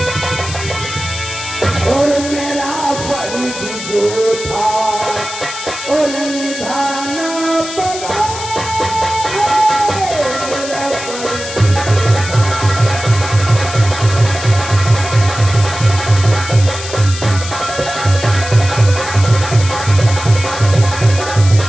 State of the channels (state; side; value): noise; left; hiss, 9 dB below the sound